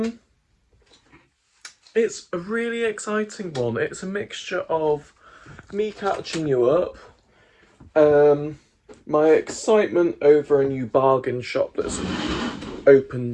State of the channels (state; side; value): identical; both; correlation 1.00